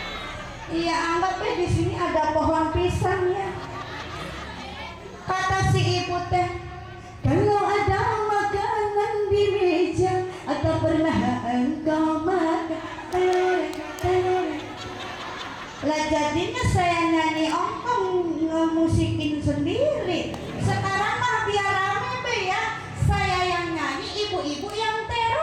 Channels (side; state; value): both; identical; correlation 1.00